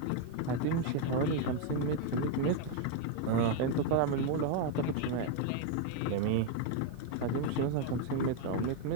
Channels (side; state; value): both; different; correlation 0.01